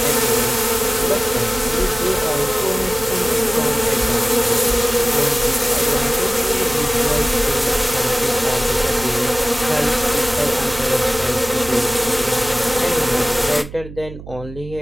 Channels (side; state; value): right; noise; hum, 14 dB below the sound